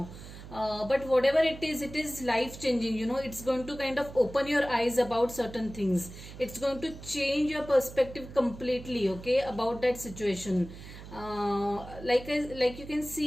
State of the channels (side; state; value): right; noise; hum, 14 dB below the sound